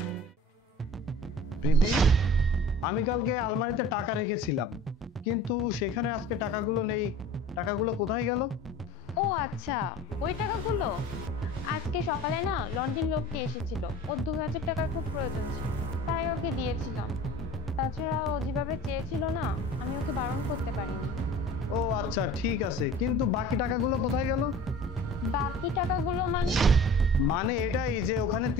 প্রীতি, আমি কালকে আলমারিতে টাকা রেখেছিলাম, কিন্তু সেখানে আজকে টাকাগুলো নেই। টাকাগুলো কোথায় গেল? ও আচ্ছা, ওই টাকাগুলো আজকে সকালে না লন্ডন লোকটি এসেছিল, ওর 2000 টাকার খুব প্রয়োজন ছিল, তাই ওকে দিয়েছিলাম। তাছাড়া ও যেভাবে চেয়েছিল না, আমি ওকে বারণ করতে পারিনি। ও আচ্ছা ঠিক আছে, কিন্তু বাকি টাকাগুলো কোথায় গেল? বাকি টাকাগুলো মানে এটাই যে ওখানে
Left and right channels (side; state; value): both; normal; correlation 0.43